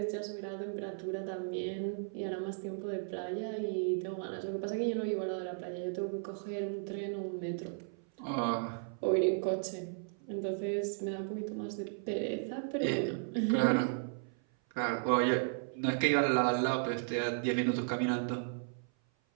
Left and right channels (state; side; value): silent; left; 54 dB below the other